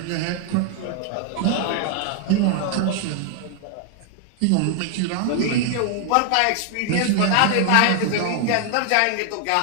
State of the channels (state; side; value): different; both; correlation 0.00